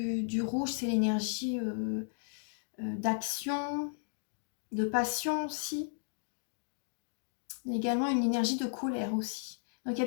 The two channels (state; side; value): silent; right; digital silence